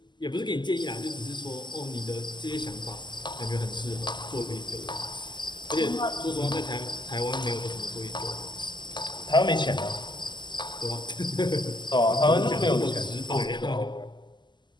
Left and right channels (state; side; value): late; right; 0.21 ms